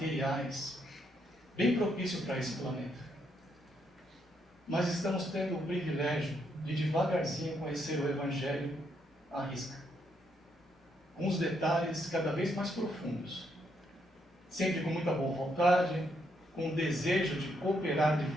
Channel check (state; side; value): normal; both; correlation 0.76